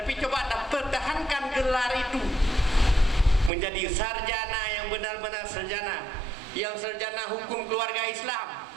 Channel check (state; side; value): drops out; left; at 3.5 s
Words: coba Anda pertahankan gelar itu menjadi sarjana yang benar-benar sarjana, yang sarjana hukum keluarga Islam.